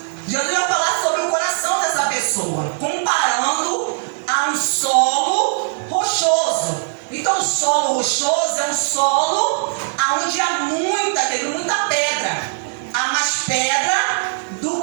Jesus vai falar sobre o coração dessa pessoa, comparando a um solo rochoso. Então o solo rochoso é um solo onde há muita pedra. Há mais pedra do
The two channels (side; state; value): left; silent; 66 dB below the other